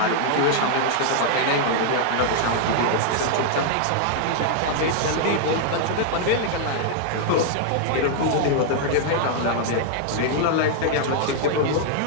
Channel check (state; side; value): different; both; correlation -0.01